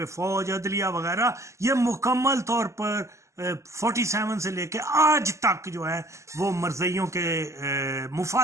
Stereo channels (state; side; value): late; left; 0.14 ms